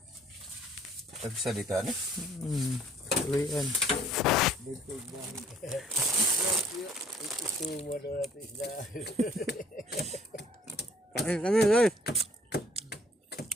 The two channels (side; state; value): both; normal; correlation 0.58